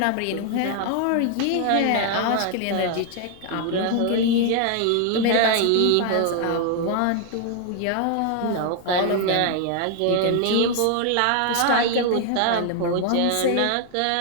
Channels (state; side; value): different; both; correlation 0.00